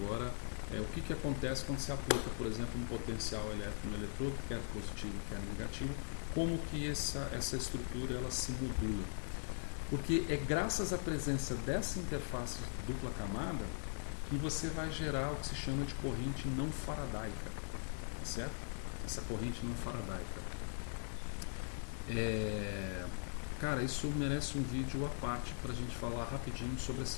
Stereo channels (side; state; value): right; silent; digital silence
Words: o que acontece quando se aplica, por exemplo, um potencial elétrico no eletrodo, quer positivo, quer negativo, como que essa estrutura ela se modula. Porque é graças à presença dessa interface de dupla camada que você vai gerar o que se chama de corrente não faradaica, certo? Essa corrente não faradaica. Cara, isso merece um vídeo à parte para a gente falar rapidinho sobre